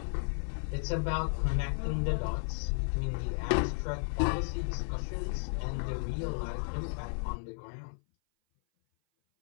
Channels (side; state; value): right; silent; 55 dB below the other